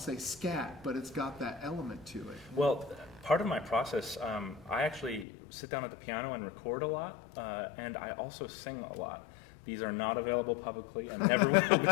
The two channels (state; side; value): drops out; right; at 5.2 s